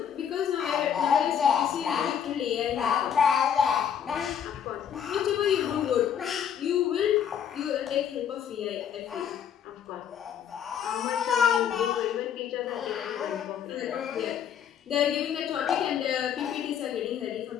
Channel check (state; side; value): quieter; right; 8.6 dB